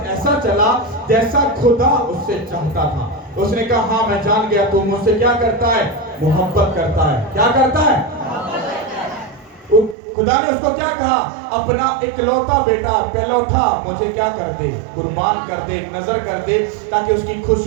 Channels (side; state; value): left; drops out; at 10.0 s